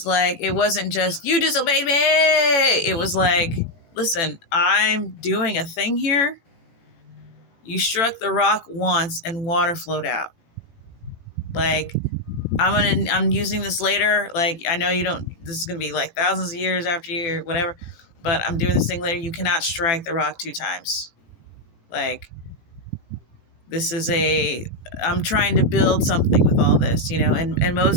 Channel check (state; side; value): late; right; 18 ms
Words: like, it wasn't just, you disobeyed me. It was like, listen, I'm doing a thing here. You struck the rock once and water flowed out. Like, I'm using this later. Like, I know this is going to be like thousands of years after you, whatever, but I'm doing this thing later. You cannot strike the rock 2 times. Like, I'm trying to build something with all this, and